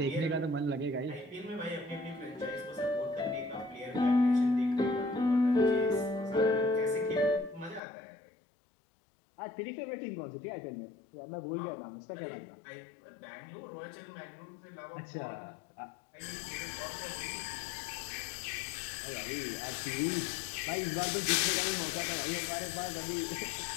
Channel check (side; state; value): right; drops out; at 7.8 s